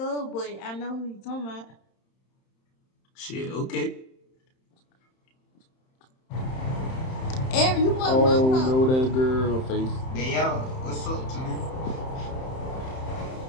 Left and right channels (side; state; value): right; late; 31 ms